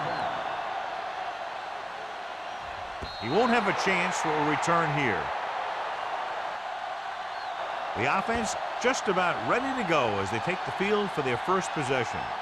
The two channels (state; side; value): identical; both; correlation 1.00